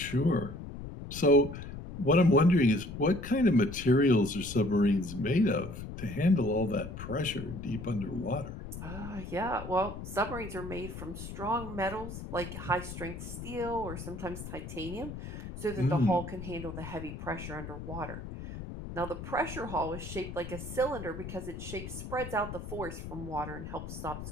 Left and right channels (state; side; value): noise; left; rumble, 9 dB below the sound